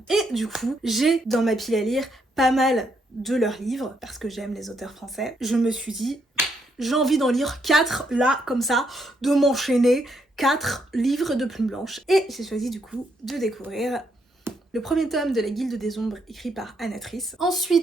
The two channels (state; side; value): normal; both; correlation 0.75